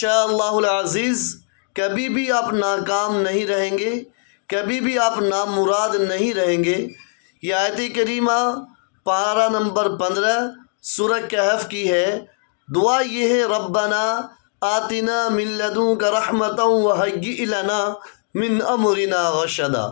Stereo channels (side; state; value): right; silent; 65 dB below the other